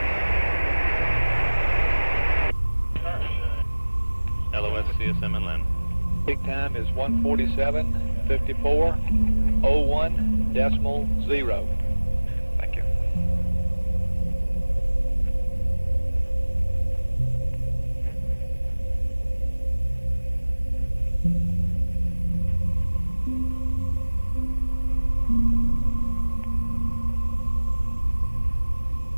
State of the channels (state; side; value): inverted; both; correlation -1.00